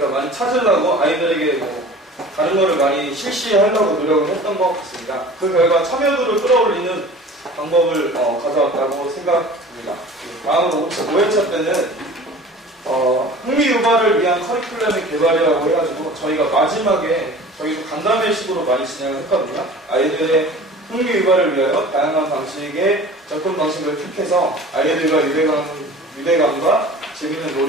많이 찾으려고 아이들에게 다른 거를 많이 실시하려고 노력을 했던 것 같습니다. 그 결과 참여도를 끌어올리는 방법을 가져왔다고 생각합니다. 다음으로 5회차 때는 흥미 유발을 위한 커리큘럼의 개발이라고 해가지고 저희가 마지막에 저희도 간담회식으로 많이 진행을 했거든요. 아이들의 흥미 유발을 위하여 다양한 방식의 접근 방식을 택해서 아이들과 유대감과 재미있는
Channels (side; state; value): both; normal; correlation 0.42